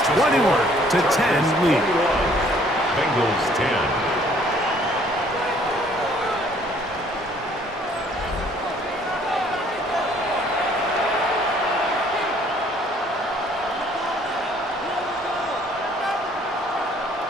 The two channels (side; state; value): both; normal; correlation 0.60